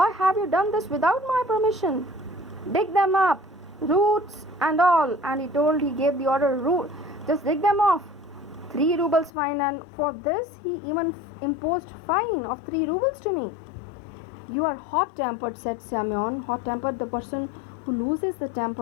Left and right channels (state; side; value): drops out; right; at 9.3 s